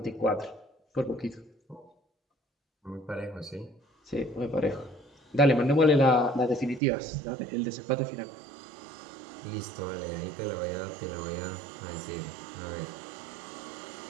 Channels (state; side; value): drops out; left; at 6.8 s